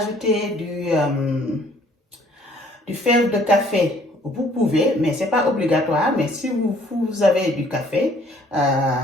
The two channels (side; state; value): both; normal; correlation 0.59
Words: du fève de café, vous pouvez, mais ce n'est pas obligatoire. Mais si vous avez du café,